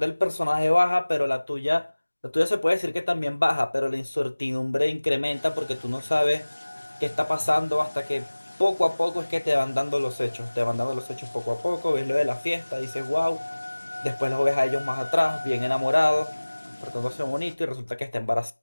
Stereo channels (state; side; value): inverted; both; correlation -1.00